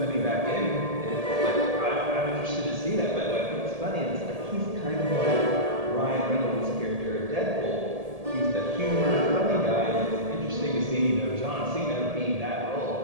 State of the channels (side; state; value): left; late; 1.8 ms